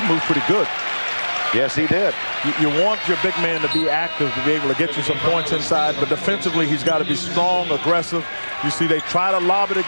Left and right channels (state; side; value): inverted; both; correlation -1.00